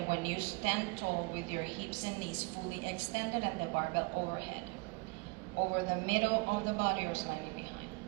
when you stand tall with your hips and knees fully extended and the barbell overhead, over the middle of the body or slightly behind.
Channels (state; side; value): quieter; left; 28.0 dB